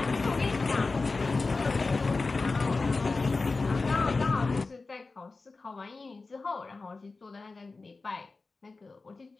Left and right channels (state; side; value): quieter; right; 3.8 dB